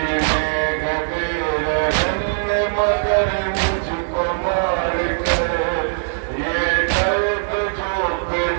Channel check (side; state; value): left; silent; digital silence